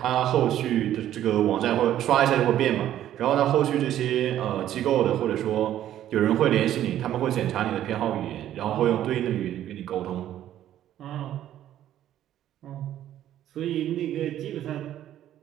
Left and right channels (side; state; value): left; quieter; 11.9 dB